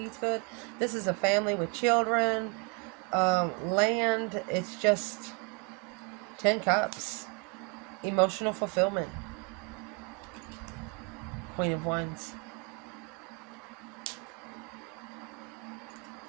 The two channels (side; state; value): left; quieter; 30.8 dB